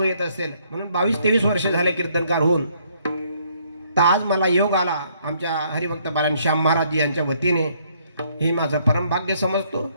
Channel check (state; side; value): inverted; both; correlation -0.67